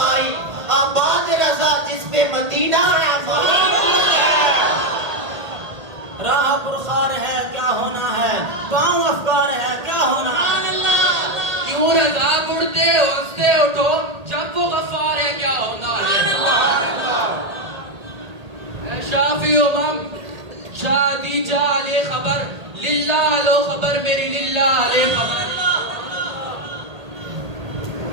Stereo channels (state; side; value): late; left; 1.8 ms